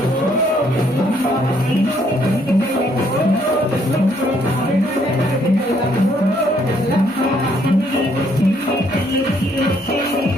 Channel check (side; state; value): both; normal; correlation 0.68